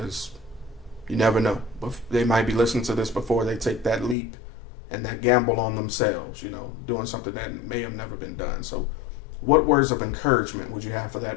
you never know. They might be listening to this before they take that leap and that gamble on themselves, you know, doing something that may have never been done. So what words of encouragement would you have for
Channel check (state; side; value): drops out; right; at 4.2 s